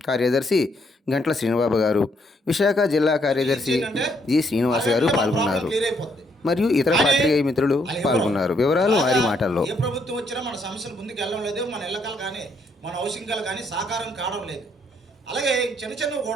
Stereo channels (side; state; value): both; normal; correlation 0.72